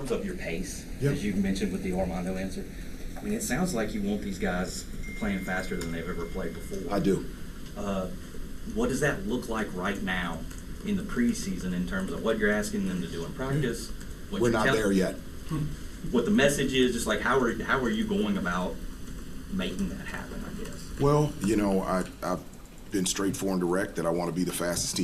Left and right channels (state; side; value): identical; both; correlation 1.00